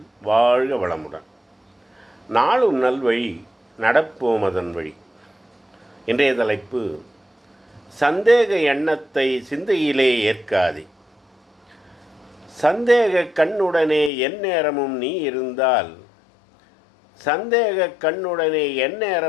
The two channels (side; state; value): right; drops out; at 14.1 s